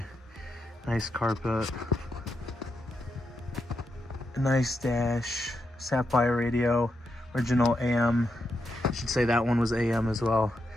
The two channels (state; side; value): normal; both; correlation 0.84